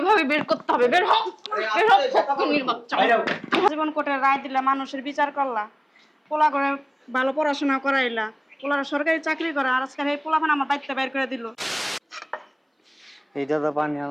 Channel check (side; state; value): both; identical; correlation 1.00